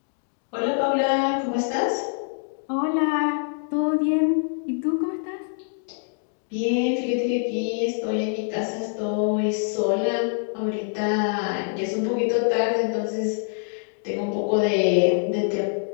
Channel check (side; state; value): right; silent; digital silence